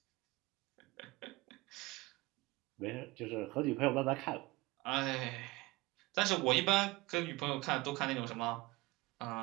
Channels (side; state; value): left; quieter; 21.4 dB